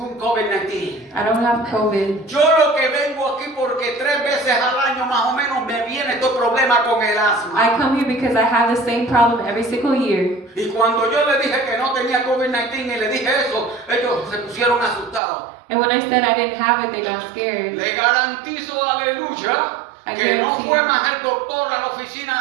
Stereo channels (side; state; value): left; drops out; at 15.2 s